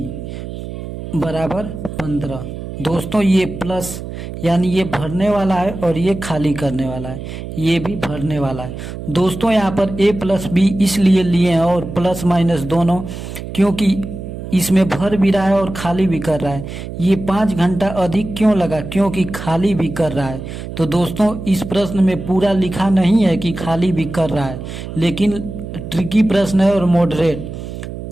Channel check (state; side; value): noise; right; hum, 9 dB below the sound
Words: बराबर 15। दोस्तों ये प्लस यानी ये भरने वाला है और ये खाली करने वाला है, ये भी भरने वाला है। दोस्तों यहाँ पर a प्लस बी इसलिए लिए हैं और प्लस माइनस दोनों, क्योंकि इसमें भर भी रहा है और खाली भी कर रहा है। ये 5 घंटा अधिक क्यों लगा, क्योंकि खाली भी कर रहा है। तो दोस्तों इस प्रश्न में पूरा लिखा नहीं है कि खाली भी कर रहा है, लेकिन ट्रिकी प्रश्न है और मॉडरेट